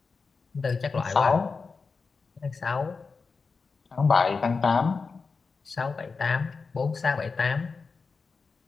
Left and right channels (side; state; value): right; quieter; 4.7 dB